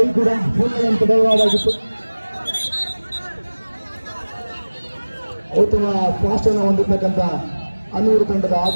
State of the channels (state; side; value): inverted; both; correlation -1.00